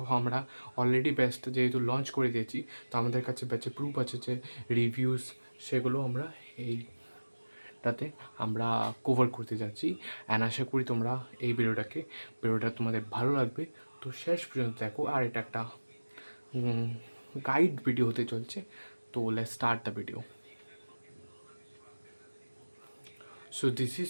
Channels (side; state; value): both; inverted; correlation -1.00